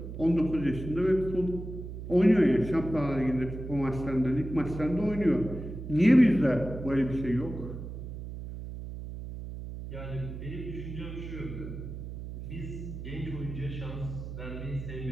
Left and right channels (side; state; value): right; noise; hum, 9 dB below the sound